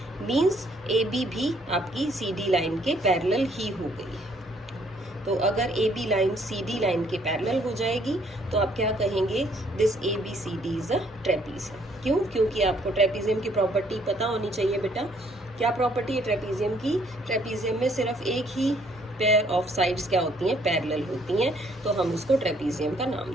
मींस AB भी आपकी CD लाइन के पैरेलल ही हो गई है। तो अगर AB लाइन CD लाइन के पैरेलल हो जाएगी तो आप क्या कहेंगे, this ABCD is a trapezium. क्यों, क्योंकि आपको ट्रेपीजियम की प्रॉपर्टी पता होनी चाहिए बेटा। क्या प्रॉपर्टी है ट्रेपीजियम की, ट्रेपीजियम में सिर्फ एक ही पेयर ऑफ साइड्स क्या होती हैं, पैरेलल होती हैं, तो हम उसको ट्रेपीजियम का नाम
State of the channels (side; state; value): both; normal; correlation 0.65